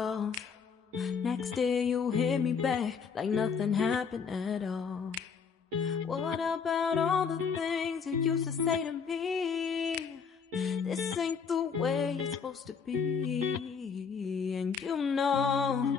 Next day you hit me back like nothing happened at all. What about all the things you used to say to me? This ain't the way it's supposed to be. And you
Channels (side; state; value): right; quieter; 6.0 dB